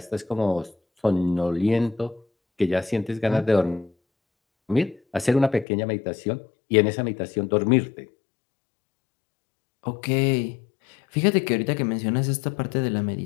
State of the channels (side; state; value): right; drops out; at 5.7 s